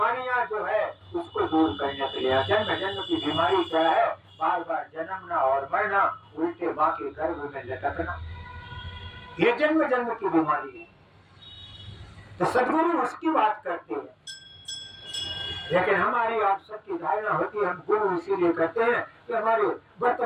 जो है उसको दूर करने के लिए। जन्म जन्म की बीमारी क्या है? बार बार जन्मना और मरना, उल्टे माँ के गर्भ में लटकना, ये जन्म जन्म की बीमारी है। तो सदगुरु उसकी बात करते हैं, लेकिन हमारी आप सबकी धारणा होती है हम गुरु इसीलिए कहते हैं कि हमारे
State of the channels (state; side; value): identical; both; correlation 1.00